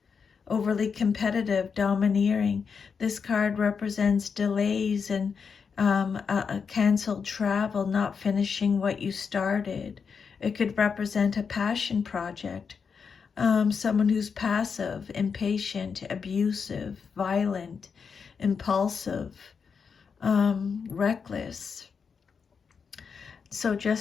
overly competitive, domineering. This card represents delays and a canceled travel, not finishing what you started. It could represent a passion project. Someone who's passive, impatient, abusive, violent, impulsive, reckless. So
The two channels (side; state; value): right; quieter; 6.0 dB